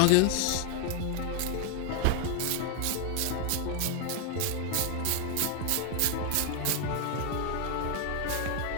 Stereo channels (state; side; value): different; both; correlation 0.01